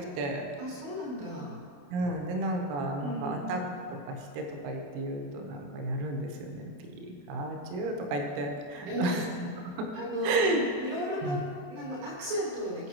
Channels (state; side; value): late; left; 28 ms